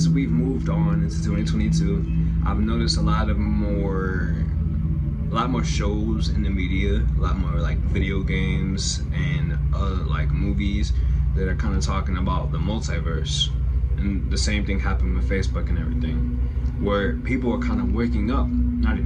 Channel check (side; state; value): both; identical; correlation 1.00